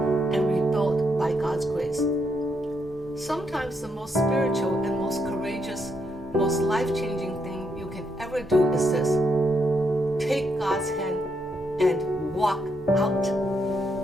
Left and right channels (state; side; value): normal; both; correlation 0.78